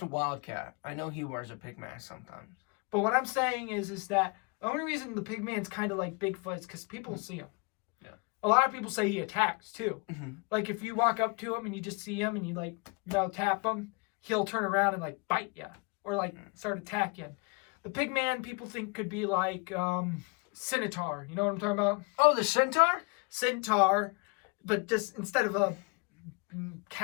Wildcat. I know he wears a pig mask sometimes. But what I'm saying is that the only reason the Pig Man's kind of like Bigfoot is because people see him. Yeah. A lot of people say he attacks, too. Mm-hmm. Like, if you walk up to him and you just see him and you, tap him, he'll turn around and, bite you. Or, start attacking. The Pig Man, people think could be, Centaur. You know what I'm talking about? Oh, the Centaur? Centaur. But just instead of a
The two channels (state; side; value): quieter; right; 31.6 dB